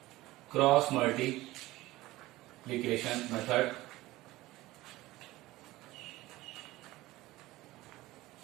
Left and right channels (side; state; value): left; quieter; 18.2 dB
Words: Cross multiplication method.